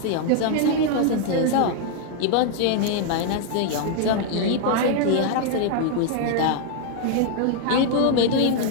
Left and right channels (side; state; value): both; different; correlation 0.00